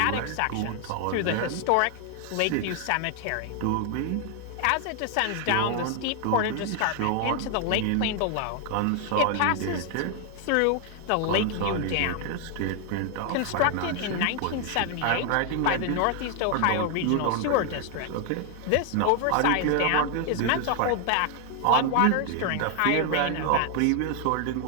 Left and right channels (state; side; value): different; both; correlation 0.00